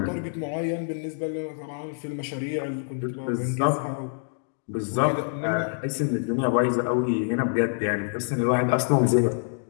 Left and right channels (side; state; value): right; silent; digital silence